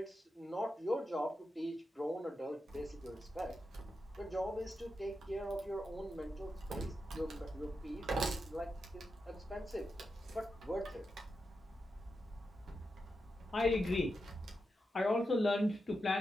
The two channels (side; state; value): both; normal; correlation 0.88